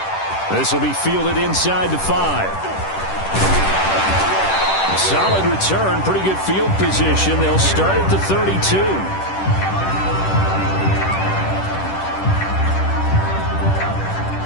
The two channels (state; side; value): late; right; 10 ms